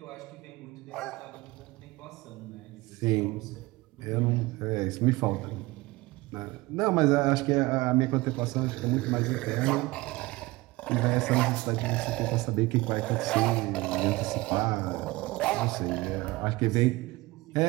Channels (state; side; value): quieter; left; 21.1 dB